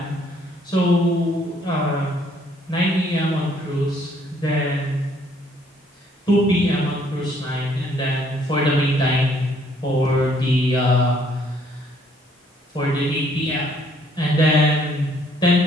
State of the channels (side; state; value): both; normal; correlation 0.64